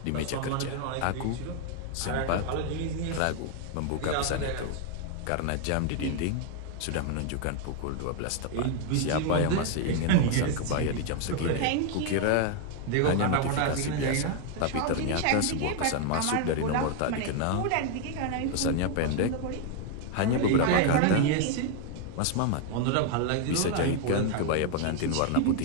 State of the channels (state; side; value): different; both; correlation 0.00